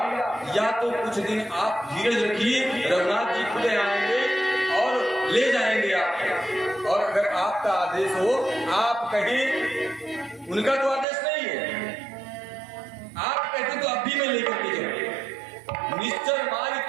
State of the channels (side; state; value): left; drops out; at 11.1 s